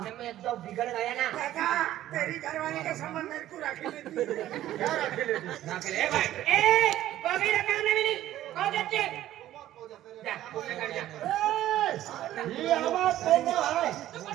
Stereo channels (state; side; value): quieter; left; 13.4 dB